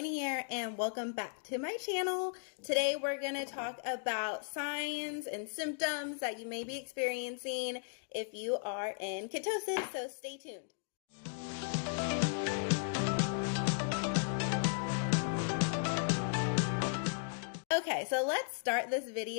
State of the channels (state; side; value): silent; right; digital silence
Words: here, and welcome back to my channel. Today we're going to talk about signs and symptoms that you may be experiencing if you are in ketosis, so stay tuned. Okay, so let's start this